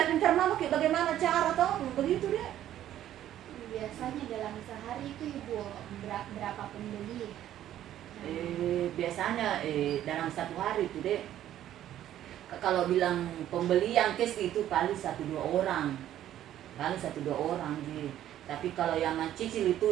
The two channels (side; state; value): left; quieter; 12.0 dB